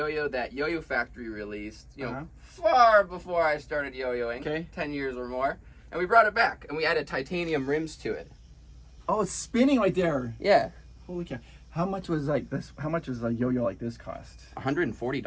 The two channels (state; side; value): identical; both; correlation 1.00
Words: that YoYoFactory released, Uh-huh. far before I started yo-yoing, Okay. 10 years or more. And we brought it back, and we added titanium rims to it. Oh, it's spinning right there. Yeah. Holy cow! How much was like this? How much was a yo-yo like this cost?